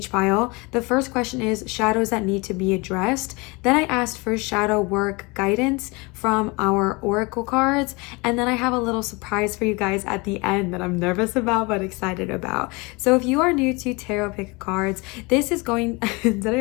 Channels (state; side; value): quieter; right; 26.7 dB